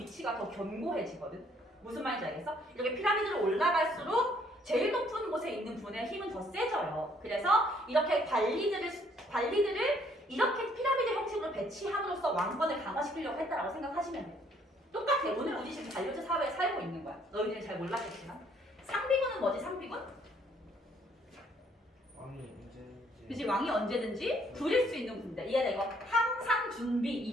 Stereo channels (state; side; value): normal; both; correlation 0.64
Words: 더 견고해지거든. 무슨 말인지 알겠어? 이렇게 피라미드로 올라갈수록 제일 높은 곳에 있는 분의 힘은 더 세져요. 그래서 이렇게 관리들을 이렇게 피라미드 형식으로 배치함으로써 왕권을 강화시키려고 했다라고 생각하시면 돼요. 똑같아. 오늘 우리 지금 관료제 사회에 살고 있는 거야. 너희들이 잘 몰랐겠지만. 상비군은 뭐지? 상비군? 왕이 언제든지. 그치, 왕이 언제든지 부릴 수 있는 군대. 이해돼? 이거 항상 준비,